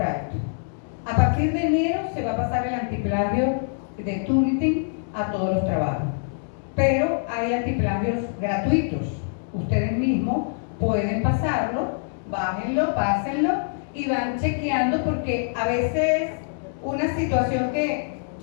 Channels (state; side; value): silent; right; digital silence